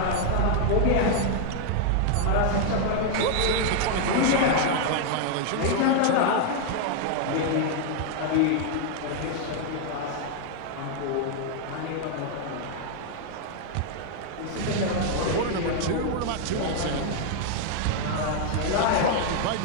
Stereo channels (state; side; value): different; both; correlation 0.00